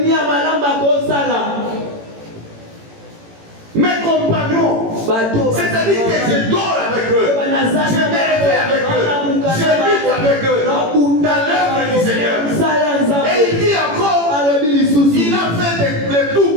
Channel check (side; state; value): left; late; 18 ms